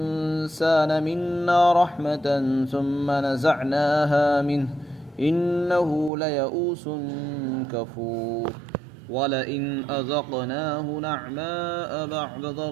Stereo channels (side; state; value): left; drops out; at 6.1 s